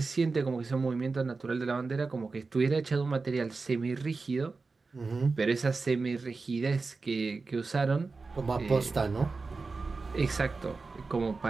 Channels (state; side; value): quieter; left; 4.1 dB